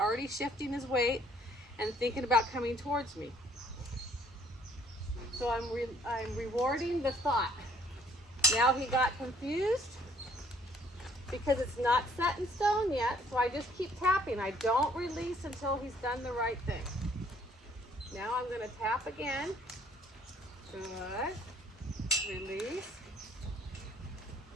shifting his weight and thinking about coming towards me. So I'm rewarding the thought. Now he got confused because it's not set in stone yet, so I just keep tapping. I don't release until he's done the right thing. Now I'm going to tap again. Good. Release.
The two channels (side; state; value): both; normal; correlation 0.61